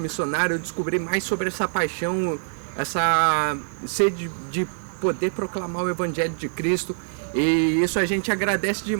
missionário, eu descobri mais sobre essa paixão, essa sede de poder proclamar o Evangelho de Cristo, e isso a gente agradece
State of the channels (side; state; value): left; silent; digital silence